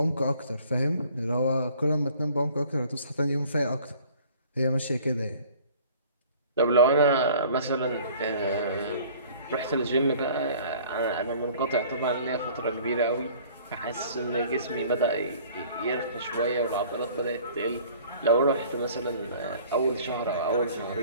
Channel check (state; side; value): inverted; both; correlation -0.51